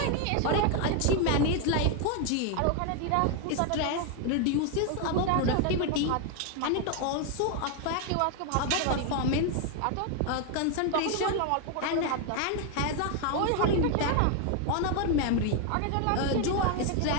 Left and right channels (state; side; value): different; both; correlation 0.01